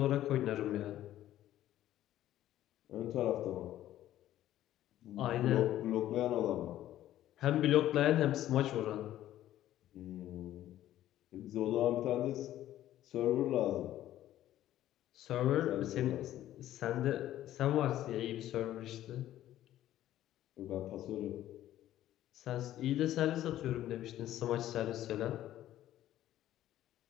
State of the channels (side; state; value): right; quieter; 13.1 dB